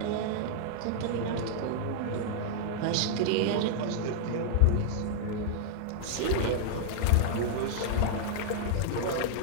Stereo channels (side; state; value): both; different; correlation -0.01